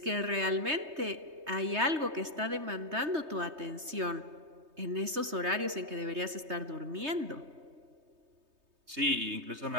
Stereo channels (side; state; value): left; late; 3.2 ms